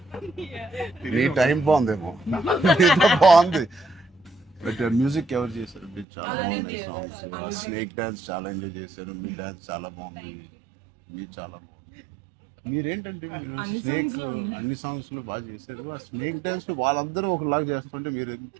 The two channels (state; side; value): drops out; left; at 6.1 s